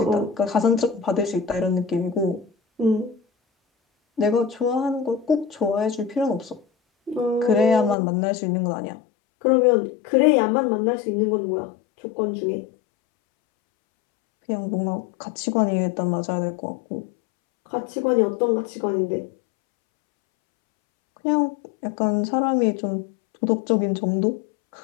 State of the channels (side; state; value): right; drops out; at 8.0 s